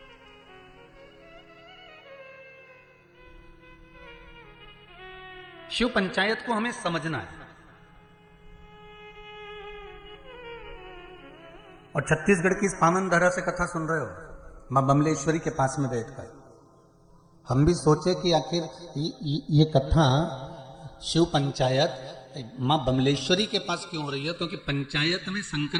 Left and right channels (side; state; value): both; identical; correlation 1.00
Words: शिव पंचायत को हमें समझना है। और छत्तीसगढ़ की इस पावन धारा से कथा सुन रहे हो, मां बमलेश्वरी के पास में बैठकर हम भी सोचे कि आखिर ये कथा शिव पंचायत मां बमलेश्वरी के पास क्यों हो रही है? क्योंकि पंचायत में,